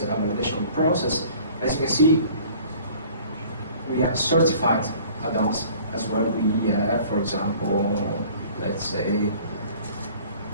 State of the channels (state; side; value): inverted; both; correlation -0.50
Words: a validation process. As you can see, we have certified add-ons as well. We have, for example, let's say,